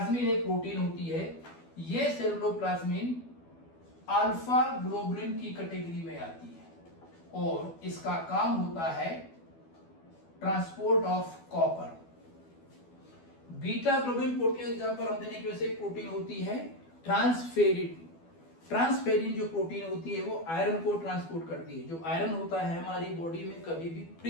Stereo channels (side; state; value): right; late; 12 ms